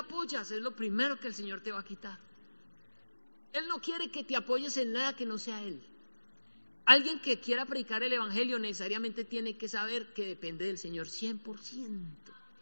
es lo primero que el Señor te va a quitar. Él no quiere que te apoyes en nada que no sea Él. Alguien que quiera predicar el Evangelio necesariamente tiene que saber que depende del Señor 100%.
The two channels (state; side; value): inverted; both; correlation -1.00